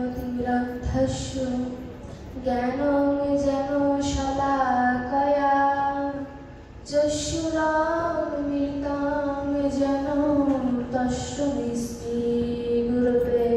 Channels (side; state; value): both; identical; correlation 1.00